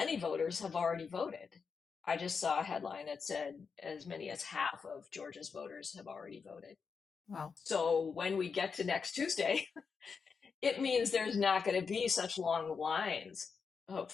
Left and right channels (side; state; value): right; quieter; 5.6 dB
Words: voters have already voted. I just saw a headline that said as many as half of Georgia's voters have already voted. Wow. So when we get to next Tuesday, it means there's not going to be such long lines,